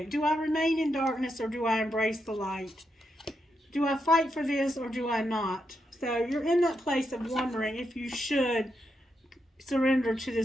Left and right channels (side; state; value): both; normal; correlation 0.83